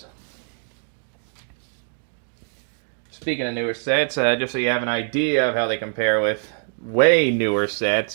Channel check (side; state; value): left; silent; 58 dB below the other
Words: Speaking of newer sets, just so you have an idea of how they compare with way newer sets,